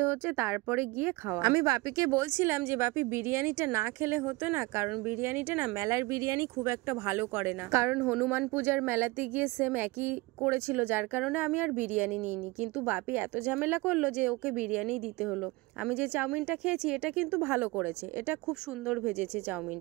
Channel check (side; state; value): left; quieter; 23.0 dB